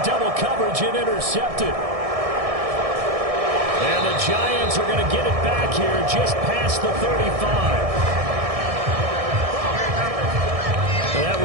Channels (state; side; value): late; left; 1.6 ms